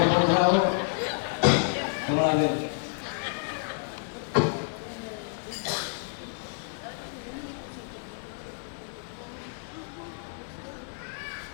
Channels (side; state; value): right; silent; digital silence